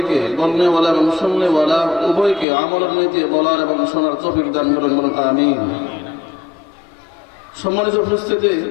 বলনেওয়ালা এবং শুননেওয়ালা উভয়কে আমলের নীতি বলার এবং শোনার তৌফিক দান করুন, বলুন আমিন। সম্মানিত উপস্থিতি,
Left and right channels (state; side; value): drops out; right; at 2.5 s